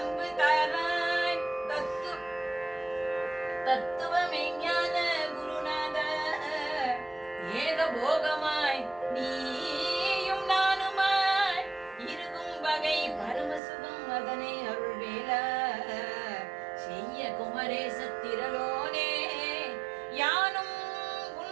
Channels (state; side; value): drops out; left; at 13.6 s